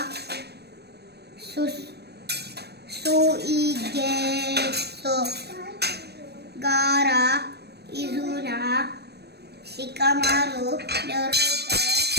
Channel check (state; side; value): late; left; 0.47 ms